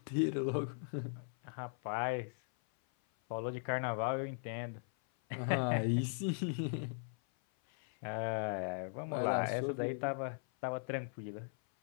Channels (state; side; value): silent; right; 52 dB below the other